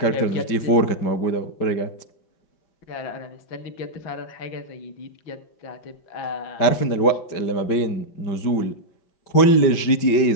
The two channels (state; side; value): late; right; 5.1 ms